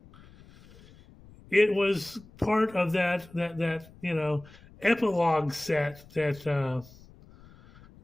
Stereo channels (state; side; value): noise; left; rumble, 24 dB below the sound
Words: it was part of that epilogue set that